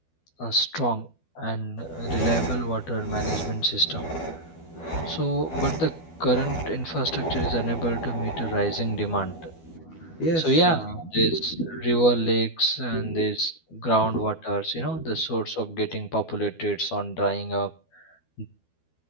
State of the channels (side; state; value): right; late; 12 ms